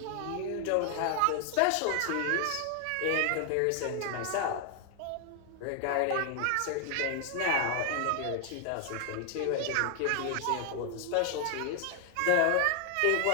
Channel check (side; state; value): both; different; correlation 0.00